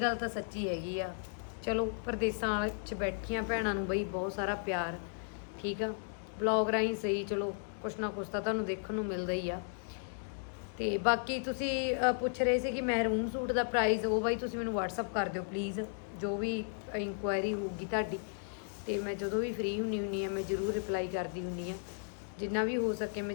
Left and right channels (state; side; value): silent; right; digital silence